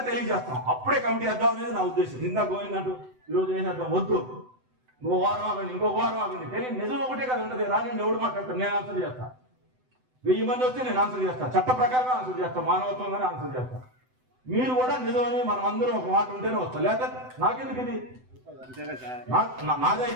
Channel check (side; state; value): left; late; 7.9 ms